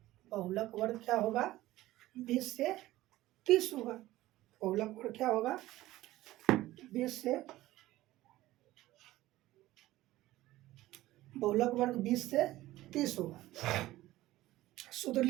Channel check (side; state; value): left; quieter; 16.5 dB